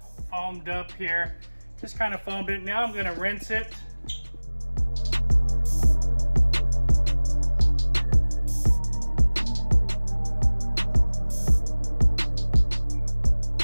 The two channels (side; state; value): both; inverted; correlation -1.00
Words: foamed up here. Just kind of foamed it. Now I'm going to rinse it.